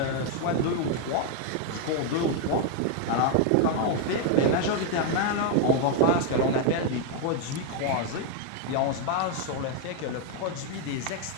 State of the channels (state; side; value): different; both; correlation 0.00